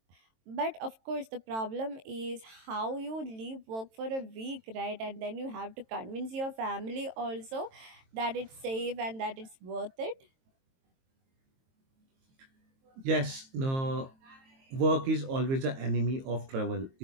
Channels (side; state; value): left; late; 22 ms